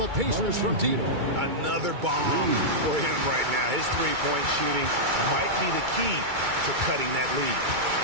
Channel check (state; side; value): late; left; 2.3 ms